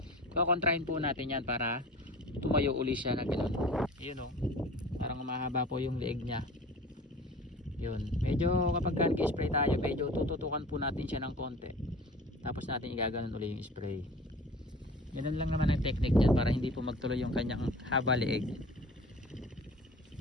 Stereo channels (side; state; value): both; normal; correlation 0.41